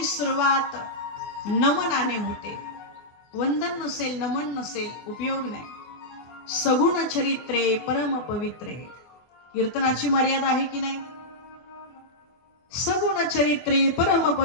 सुरुवात नमनाने होते. वंदन नसेल, नमन नसेल, उपयोग नाही. सगुण चरित्रे परम पवित्रे. कीर्तनाची मर्यादा आहे की नाही? सगुण चरित्रे परम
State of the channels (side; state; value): right; late; 24 ms